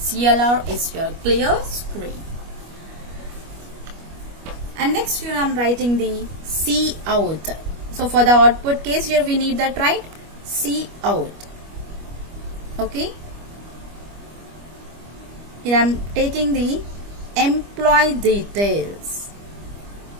is your clear screen. And next here I am writing the C out. So for the output case, here we need that, right? C out. Okay. Here I am taking the employee details.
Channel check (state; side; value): late; left; 25 ms